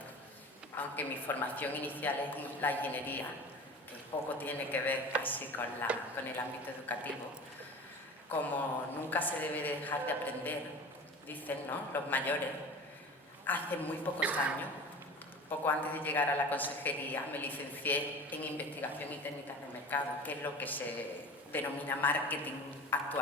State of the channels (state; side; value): normal; both; correlation 0.37